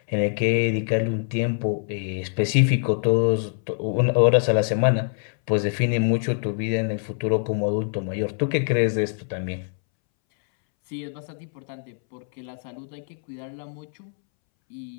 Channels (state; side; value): silent; right; 62 dB below the other